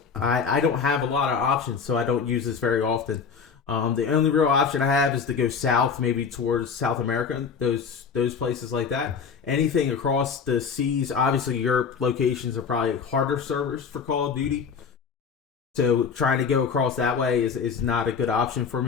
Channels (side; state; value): right; quieter; 6.0 dB